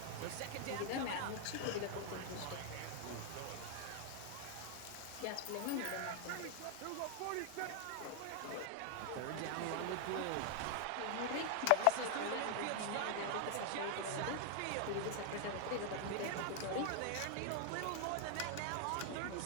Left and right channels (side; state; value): both; different; correlation 0.00